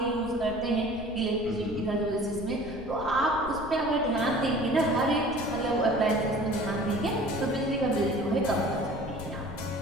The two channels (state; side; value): noise; left; rumble, 14 dB below the sound